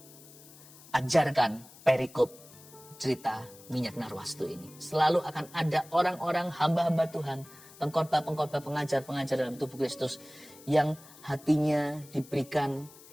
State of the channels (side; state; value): left; noise; hiss, 21 dB below the sound